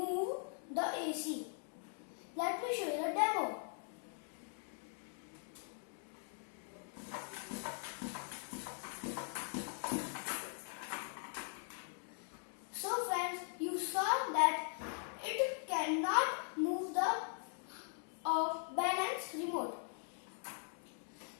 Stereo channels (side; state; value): right; silent; 50 dB below the other